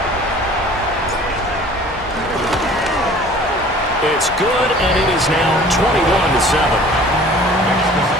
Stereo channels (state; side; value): normal; both; correlation 0.48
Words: It's good, and it is now 21-7.